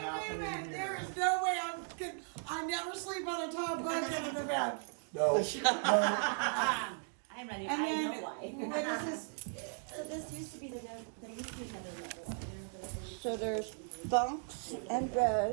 here. There is no way I never sleep on a top bunk in the bed. No. I'm ready. And I then, know why. what is this? So this used to be there used to be another level up there, but So there's bunks and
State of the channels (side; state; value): left; silent; 53 dB below the other